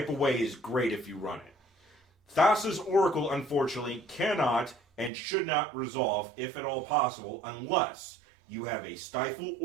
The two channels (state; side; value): drops out; left; at 5.1 s